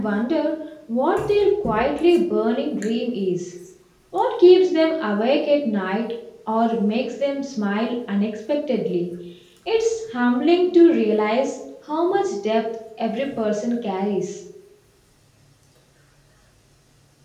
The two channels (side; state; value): both; identical; correlation 1.00